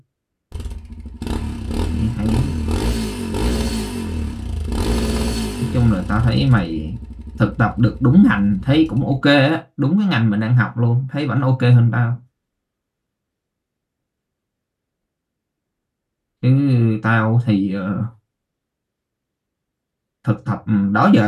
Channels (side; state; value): both; identical; correlation 1.00